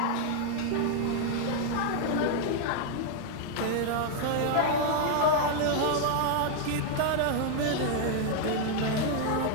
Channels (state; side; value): different; both; correlation 0.00